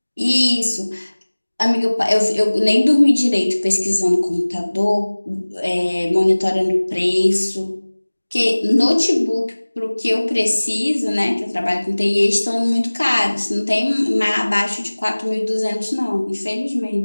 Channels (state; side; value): inverted; both; correlation -1.00